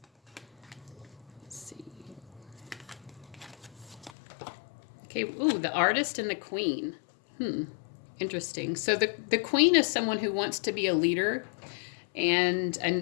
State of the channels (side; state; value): right; drops out; at 4.1 s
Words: Let's see. Okay, ooh, the Artist and the Queen. Interesting. So the Queen is someone who wants to be a leader, and